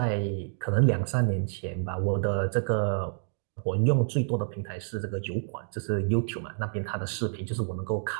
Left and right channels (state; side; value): silent; left; digital silence